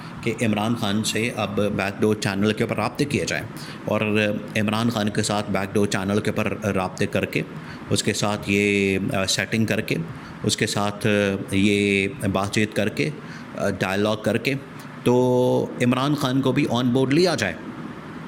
कि इमरान खान से अब बैकडोर चैनल के ऊपर राब्ते किए जाएँ, और इमरान खान के साथ बैकडोर चैनल के ऊपर राब्ते करके, उसके साथ ये सेटिंग करके, उसके साथ ये बातचीत करके, डायलॉग करके, तो इमरान खान को भी ऑन बोर्ड लिया जाए।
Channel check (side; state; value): both; identical; correlation 1.00